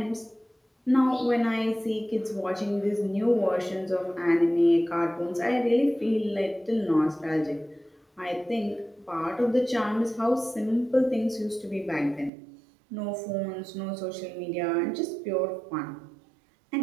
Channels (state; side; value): drops out; left; at 12.3 s